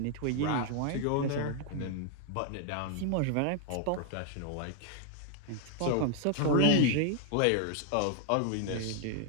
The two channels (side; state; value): both; different; correlation 0.00